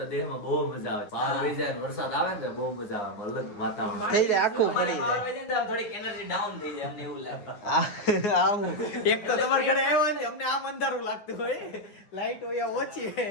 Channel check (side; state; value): right; late; 9.5 ms